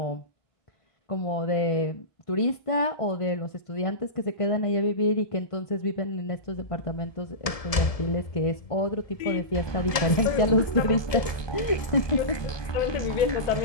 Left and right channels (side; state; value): right; late; 1.7 ms